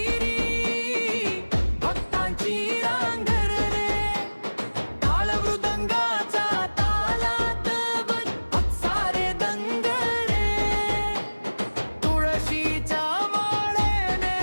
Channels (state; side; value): inverted; both; correlation -1.00